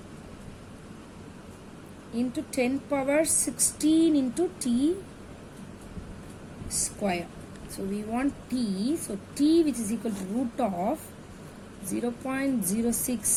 into 10 power 16 into t square. So we want t, so t which is equal to root of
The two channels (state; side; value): identical; both; correlation 1.00